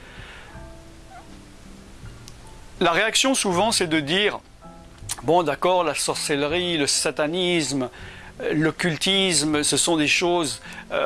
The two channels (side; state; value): both; identical; correlation 1.00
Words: La réaction souvent c'est de dire bon d'accord, la sorcellerie, le satanisme, l'occultisme, ce sont des choses